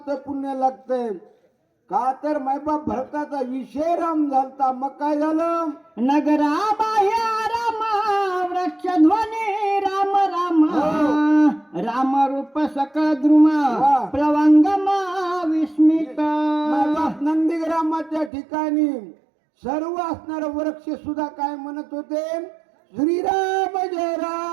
पुण्य लागतंय. का तर मायबाप भरताचा विषय राम झालता. मग काय झालं नगरा बाह्य राम वृक्षध्वनी राम राम. राम रूप सकळ द्रुम प्लवंगम विस्मित. मायबाप नंदीग्रामाच्या ठिकाणी सर्व असणार वृक्ष सुद्धा काय म्हणत होते श्रीराम जय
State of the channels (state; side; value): drops out; left; at 18.3 s